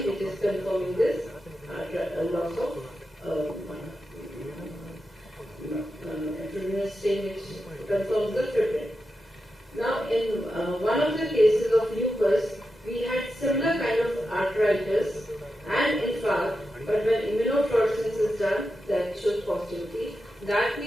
which is confirming this loss of fibrinogen stain which confirms the fibrin. Now, in one of the cases of lupus, we had similar kind of arthritis and infarct, but when immunofluorescence is done, that shows positivity. That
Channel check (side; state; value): both; normal; correlation 0.89